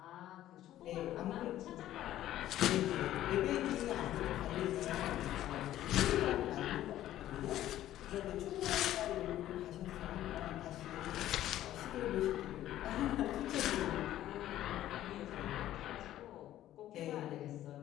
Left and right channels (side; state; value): right; quieter; 13.2 dB